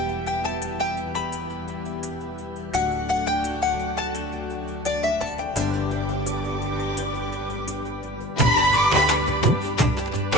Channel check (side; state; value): both; normal; correlation 0.42